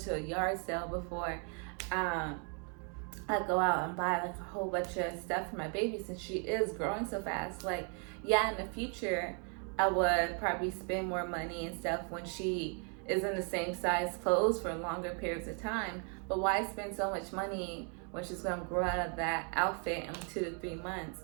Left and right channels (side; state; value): left; quieter; 39.8 dB